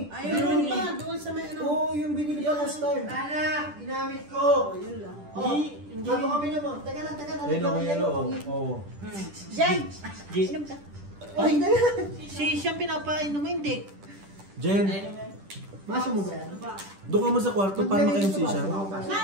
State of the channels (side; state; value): left; late; 10 ms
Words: Ayun pa. Doon sa may ano. Oo, yung binili pa last time. Anak, ginamit ko. Yun lang. Hindi. Bago kami naman. Teka lang. Ayun ang yellow. Oo. Jen. Jen. Inom ka. Ay, Si siyang pinapainom mo, hindi. Jen, Maso mo ba yan? doon ka mo sa kwarto para makayong sisya.